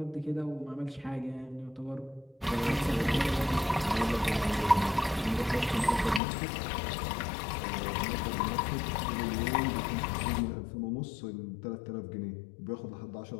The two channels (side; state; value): right; drops out; at 6.2 s